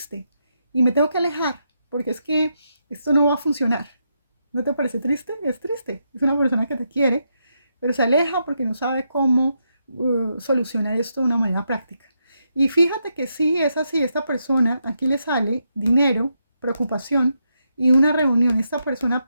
Y me tengo que alejar porque es que esto no va a funcionar. ¿No te parece triste? Es triste. Es una persona que te quiere, pero se aleja porque no sabe cómo solucionar esto de una manera práctica. Y fíjate que sí es así, esta persona, aquí le sale dinero, preocupación y una reunión. Esta persona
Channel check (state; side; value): inverted; both; correlation -0.82